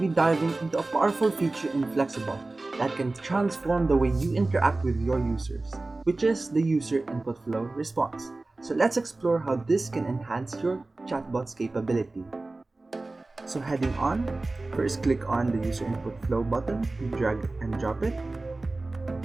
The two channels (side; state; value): left; quieter; 3.1 dB